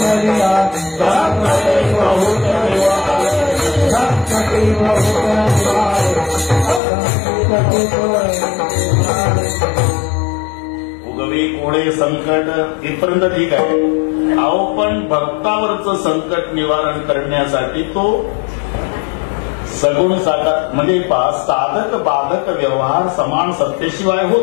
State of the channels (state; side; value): drops out; right; at 6.8 s